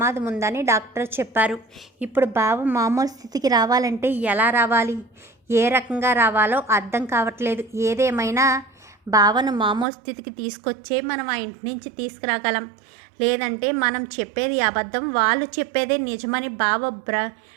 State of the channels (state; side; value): drops out; left; at 9.9 s